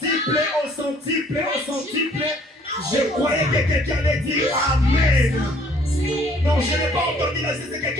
au centuple, au centuple. Je croyais que quelqu'un allait dire Amen. Someone say Non, je n'ai pas entendu la c'est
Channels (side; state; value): both; normal; correlation 0.59